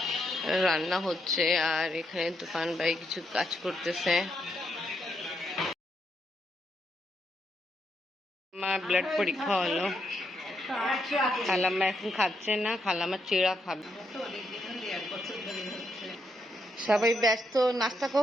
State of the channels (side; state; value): both; normal; correlation 0.79